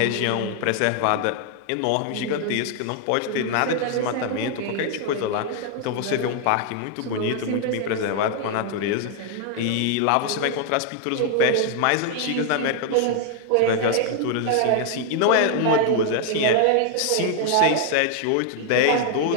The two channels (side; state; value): both; different; correlation 0.00